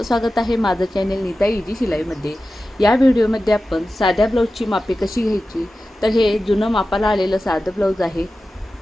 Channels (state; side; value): normal; both; correlation 0.94